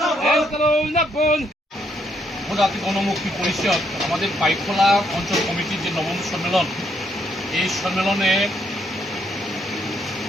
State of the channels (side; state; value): both; normal; correlation 0.73